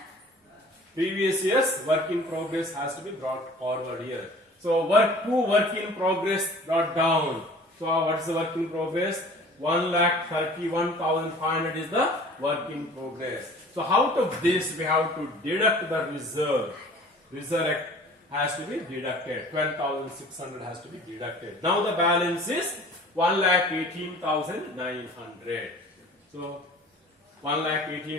Previous year's work in progress has to be brought forward here. So work in progress brought down. So what is the work in progress? 1,31,500 is the work in progress. So out of this we have to deduct the reserve has to be deducted. 12,600 has to be deducted. Now the balance is 1,18,900. So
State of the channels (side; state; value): both; normal; correlation 0.46